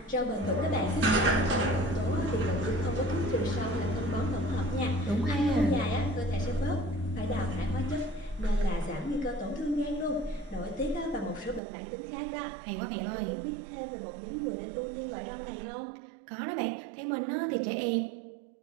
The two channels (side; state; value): left; drops out; at 11.6 s